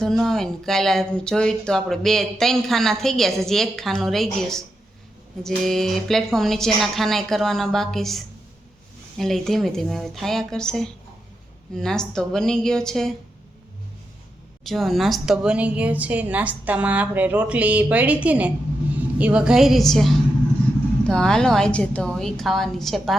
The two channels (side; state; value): both; normal; correlation 0.86